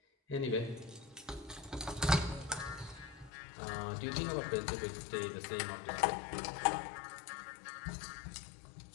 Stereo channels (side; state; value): right; drops out; at 3.3 s